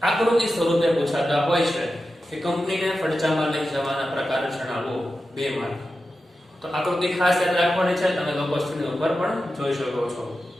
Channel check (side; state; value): both; normal; correlation 0.92